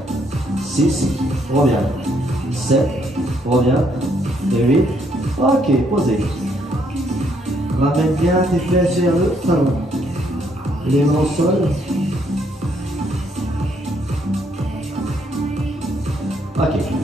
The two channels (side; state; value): both; normal; correlation 0.71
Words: 6, reviens. 7, reviens. 8, ok, posez. Ramène bien tes fesses vers le talon. Les mains au sol. Ok.